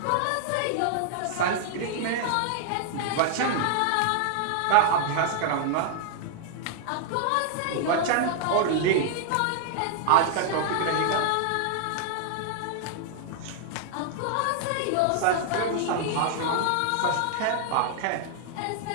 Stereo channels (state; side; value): different; both; correlation 0.00